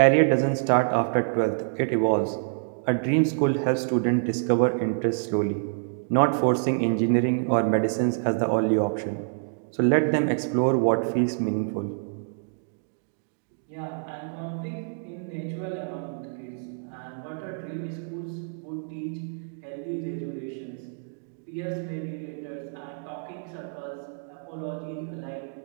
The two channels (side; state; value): left; silent; digital silence